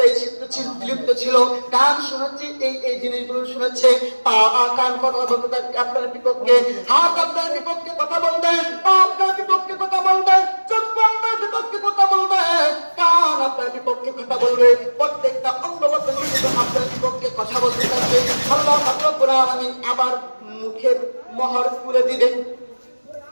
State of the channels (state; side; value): inverted; both; correlation -1.00